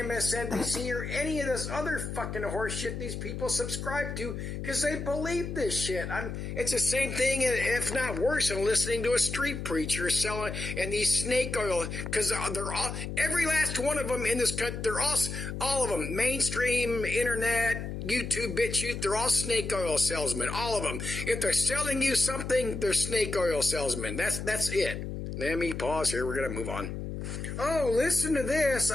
or any of this other fucking horse shit these people subscribe to because they believe this shit. It's the same thing, if not worse, than listening to a street preacher selling and these snake oil, because they're all, every last one of them in this country, they're all of them, mainstream, internet, YouTube, BitChute, they're all snake oil salesmen, all of them. If they're selling you something, they're snake oil salesmen. That's it. Let me pause here. We're going to move on. Oh, listen to this.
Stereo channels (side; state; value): left; noise; hum, 6 dB below the sound